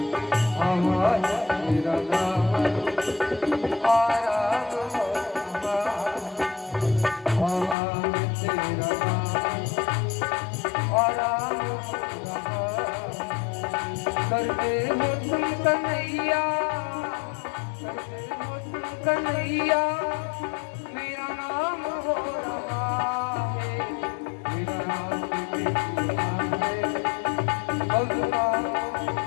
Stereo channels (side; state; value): right; drops out; at 7.8 s